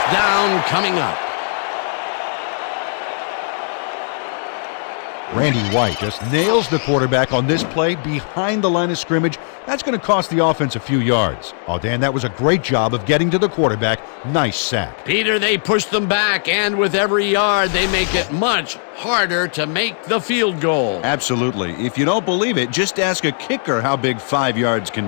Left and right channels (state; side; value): silent; right; digital silence